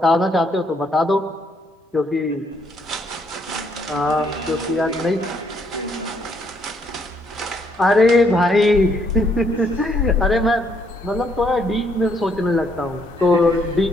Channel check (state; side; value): normal; both; correlation 0.71